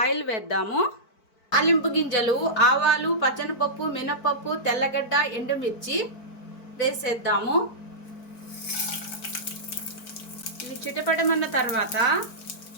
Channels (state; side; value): late; right; 4.5 ms